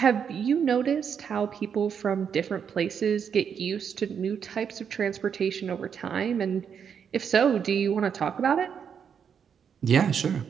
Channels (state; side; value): quieter; left; 7.4 dB